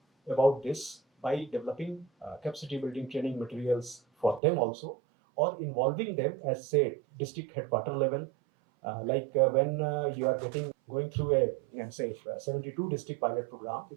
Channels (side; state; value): left; drops out; at 4.4 s